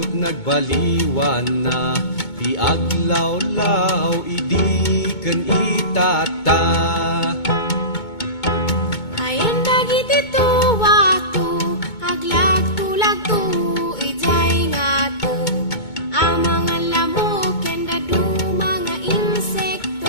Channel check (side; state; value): right; late; 2.2 ms